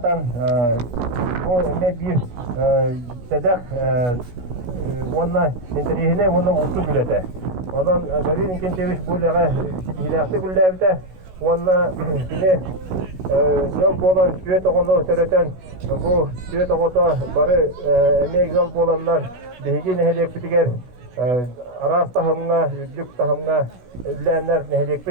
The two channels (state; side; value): late; left; 16 ms